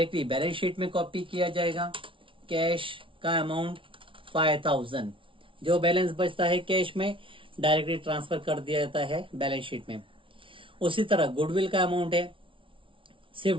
बैलेंस शीट में कॉपी किया जाएगा। कैश का अमाउंट 5000, जो बैलेंस बचता है कैश में डायरेक्टली ट्रांसफर कर दिया जाता है बैलेंस शीट में। उसी तरह गुडविल का अमाउंट है, सिर्फ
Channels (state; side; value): late; left; 0.25 ms